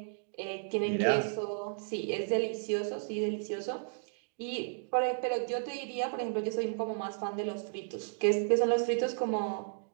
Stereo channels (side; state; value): left; silent; digital silence